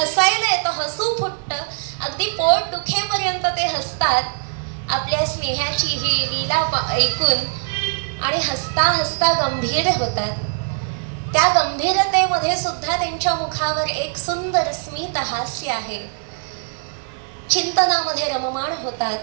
येतं, हसू फुटतं, अगदी पोट दुखेपर्यंत ते हसतात आपल्या स्नेहाची ही लीला ऐकून, आणि हसता हसता गंभीर होतात. त्या गंभीरतेमध्ये सुद्धा त्यांच्या मुखावर एक सुंदर स्मित हास्य आहे. चिंतनामध्ये रममाण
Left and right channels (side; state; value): left; silent; digital silence